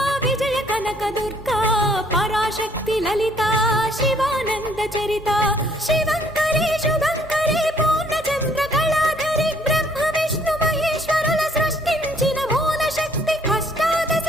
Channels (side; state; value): both; normal; correlation 0.63